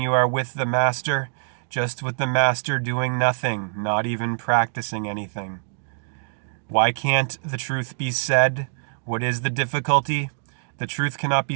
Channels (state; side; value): silent; left; digital silence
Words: are with the Master, just with the Master doing nothing, not even practicing anything. Why can't the truth be said? What is the difficulty? The truth cannot